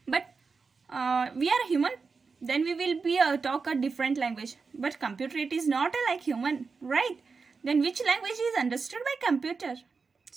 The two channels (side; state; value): left; quieter; 4.8 dB